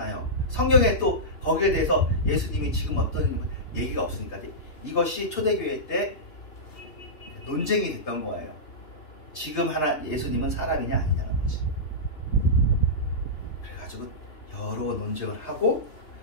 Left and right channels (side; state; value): right; late; 3.3 ms